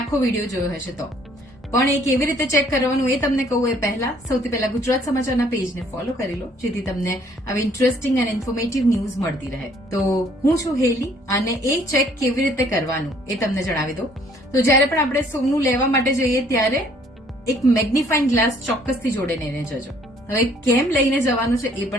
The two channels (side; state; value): both; normal; correlation 0.61